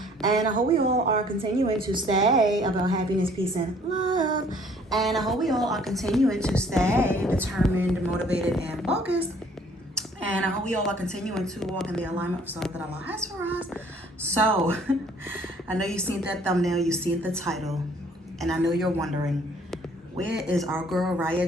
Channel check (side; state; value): both; normal; correlation 0.58